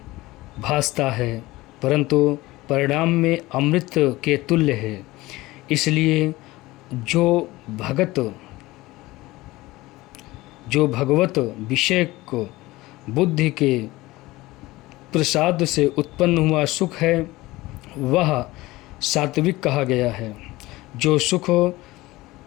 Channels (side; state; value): right; quieter; 19.3 dB